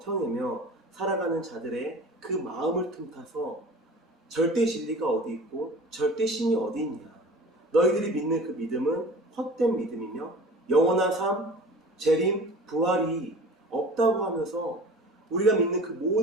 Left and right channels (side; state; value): both; normal; correlation 0.40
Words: 살아가는 자들의 그 마음을 틈타서 절대 진리가 어디 있고 절대 신이 어디 있냐, 너희들이 믿는 그 믿음은 헛된 믿음이며 영원한 삶, 재림, 부활이 없다고 하면서 우리가 믿는 그